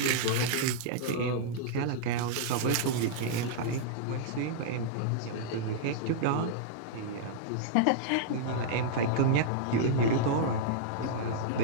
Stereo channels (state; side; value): different; both; correlation -0.02